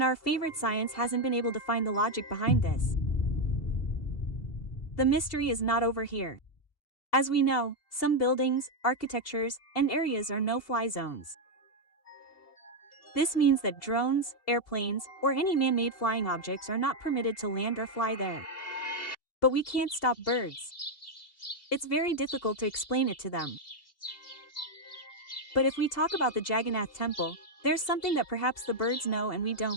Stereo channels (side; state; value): right; late; 2.8 ms